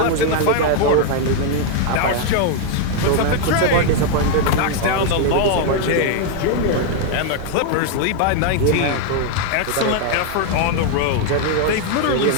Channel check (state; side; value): different; both; correlation 0.00